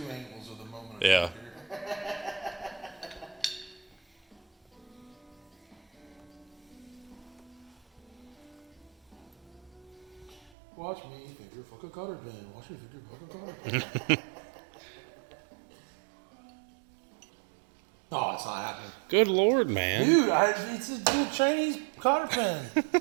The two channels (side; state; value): left; drops out; at 10.5 s